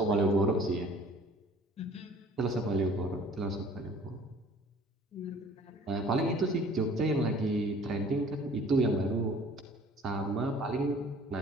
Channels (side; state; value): both; normal; correlation 0.51